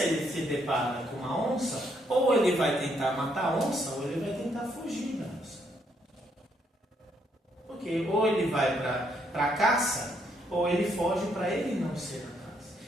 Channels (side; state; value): both; normal; correlation 0.73